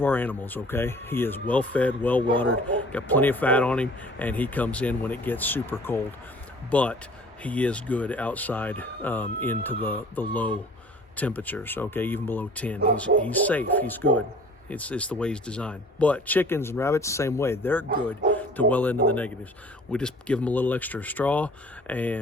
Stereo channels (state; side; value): normal; both; correlation 0.49